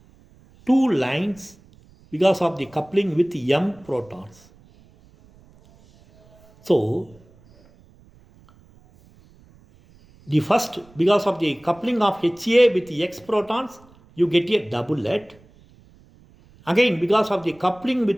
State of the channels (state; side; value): noise; right; rumble, 28 dB below the sound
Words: 2 lines because of the coupling with M protons. So the first, because of the coupling of HA with the X protons, you get a doublet. Again, because of the coupling